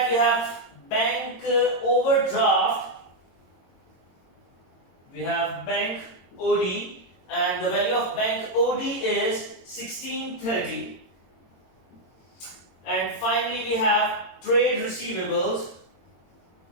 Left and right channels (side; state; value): right; late; 22 ms